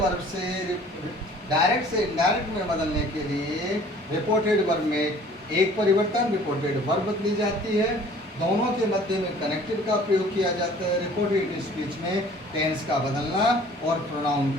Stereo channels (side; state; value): both; normal; correlation 0.51